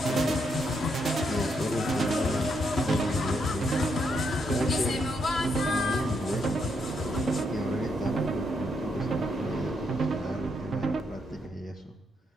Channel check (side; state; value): both; normal; correlation 0.77